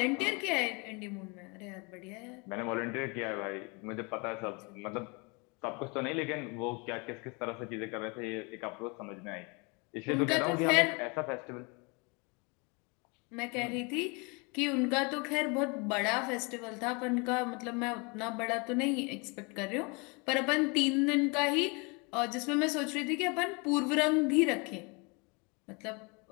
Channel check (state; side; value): quieter; right; 30.3 dB